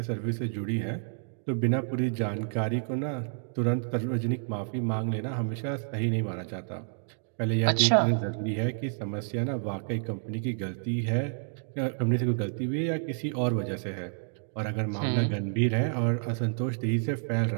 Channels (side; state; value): left; silent; digital silence